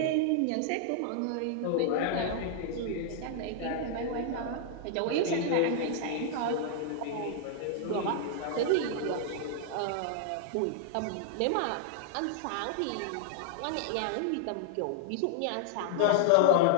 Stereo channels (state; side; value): different; both; correlation -0.01